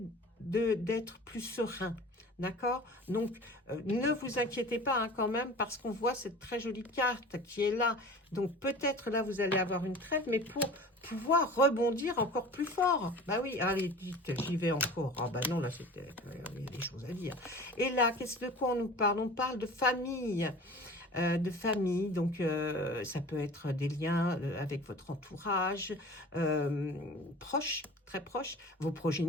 d'être plus serein. D'accord? Donc, ne vous inquiétez pas hein, quand même, parce qu'on voit cette très jolie carte qui est là. Donc, peut-être là, vous allez avoir une trêve, mais pour pouvoir rebondir encore plus fort. Bah oui, allez, vite, j'y vais encore. Ah bah non, là, il y a des choses à dire. Et là, de quoi on nous parle? On parle de famille. de famille. Donc, ça peut être des liens avec votre entourage, proche, très proche, vos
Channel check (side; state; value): both; normal; correlation 0.40